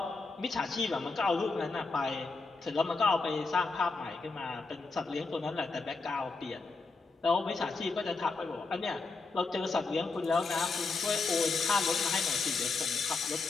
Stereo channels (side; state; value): right; quieter; 4.0 dB